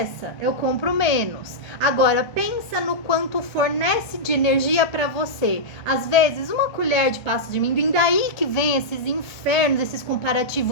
eu compro menos. Agora, pensa no quanto fornece de energia para você. Às vezes, uma colher de pasta de amendoim, daí que vem esses infernos, esses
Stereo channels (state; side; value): late; right; 1.2 ms